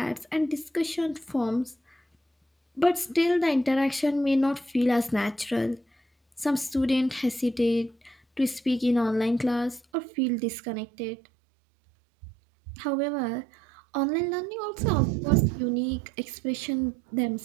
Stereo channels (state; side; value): drops out; left; at 9.8 s